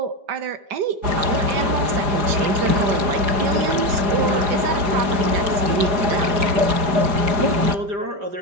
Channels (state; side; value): late; left; 5.1 ms